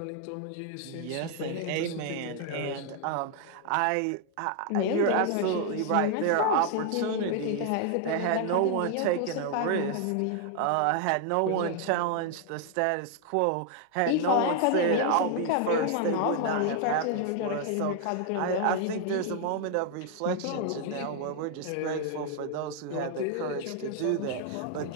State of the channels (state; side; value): different; both; correlation 0.00